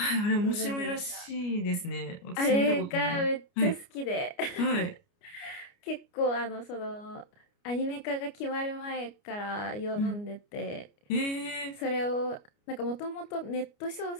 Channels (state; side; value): late; right; 29 ms